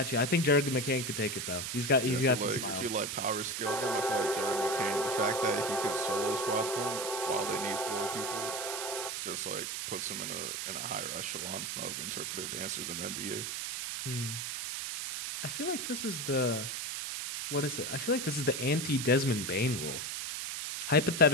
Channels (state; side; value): noise; right; hiss, 4 dB below the sound